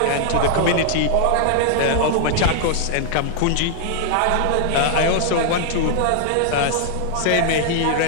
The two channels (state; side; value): different; both; correlation 0.00